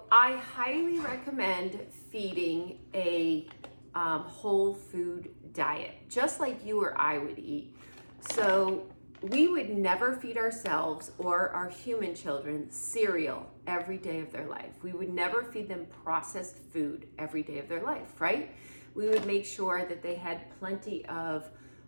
I highly recommend feeding a whole food diet, just like you or I would eat. So we would never feed ourselves or our human children cereal every day of their life. We would never feed them processed food every day of their life, right? We would make sure that they had plenty of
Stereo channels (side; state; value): both; inverted; correlation -1.00